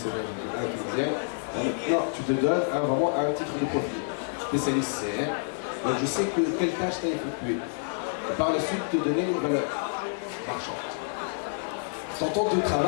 un tunisien. Non, tu te donnes vraiment un titre de profil. Spécialiste CR. Donc, je sais quelle tâche tu as effectuée. Et par la suite, te donner une valeur marchande. Ton temps de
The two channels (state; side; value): silent; right; 59 dB below the other